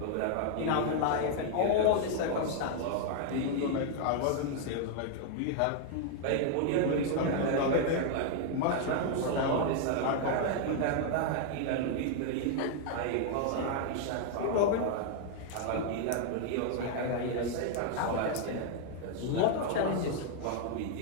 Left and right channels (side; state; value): both; different; correlation 0.00